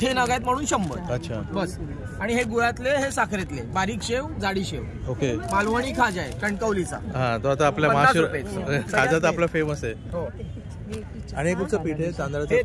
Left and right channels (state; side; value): identical; both; correlation 1.00